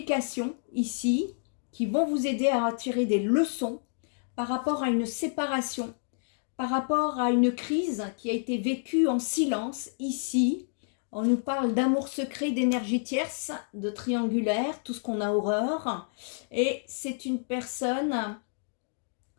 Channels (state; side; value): silent; right; digital silence